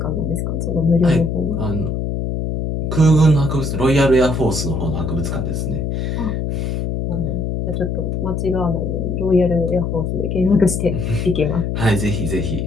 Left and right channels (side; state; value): left; noise; hum, 1 dB below the sound